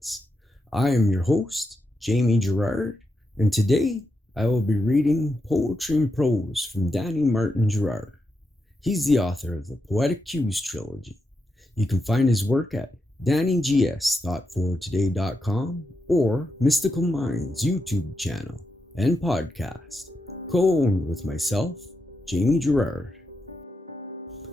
I am your host, Jamie Girard, and today I will be reading Poetry and Prose from Danny Martin Girard. He's the author of the Poetic Cues trilogy. You can find his work at DannyGS.fortoday.com or Mystical Minds YouTube channel and podcast, co-owned with myself, Jamie Girard.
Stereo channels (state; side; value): normal; both; correlation 0.86